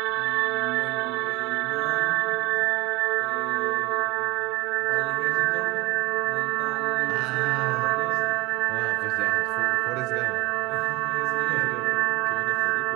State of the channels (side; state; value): left; quieter; 21.8 dB